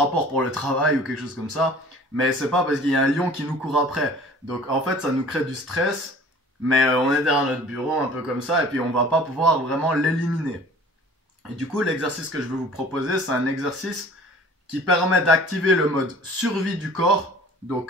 pour le travail ou quelque chose comme ça. Mais c'est pas parce qu'il y a un lion qui nous court après. Donc en fait, ça nous crée du stress. Mais on est derrière notre bureau un peu comme ça et puis on va pas pouvoir vraiment l'éliminer. Et du coup, l'exercice que je vais vous proposer, c'est un exercice qui permet d'activer le mode survie du corps, donc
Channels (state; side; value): normal; both; correlation 0.47